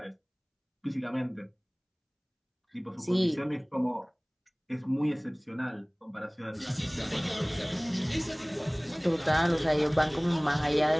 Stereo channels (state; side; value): identical; both; correlation 1.00